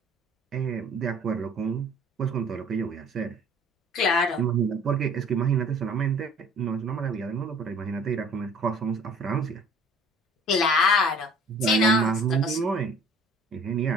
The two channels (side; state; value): both; normal; correlation 0.51